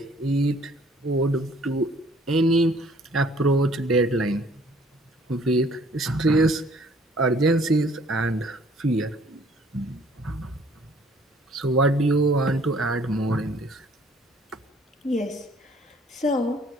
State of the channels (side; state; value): both; normal; correlation 0.58